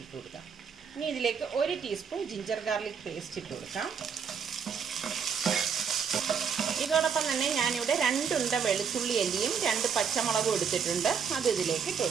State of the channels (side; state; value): left; quieter; 6.7 dB